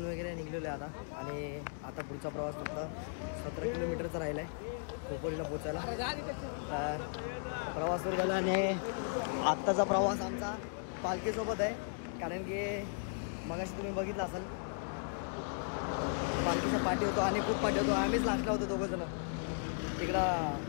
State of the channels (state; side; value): silent; right; digital silence